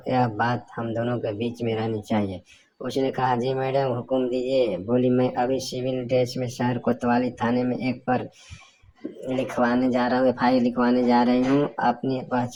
यह बात हम दोनों के बीच में रहनी चाहिए। उसने कहा, जी मैडम, हुक्म दीजिए। बोली, मैं अभी सिविल ड्रेस में शहर कोतवाली थाने में एक पर लिखवाने जा रहा हूँ, एफआईआर लिखवाने जा रही हूँ। अपनी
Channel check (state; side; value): identical; both; correlation 1.00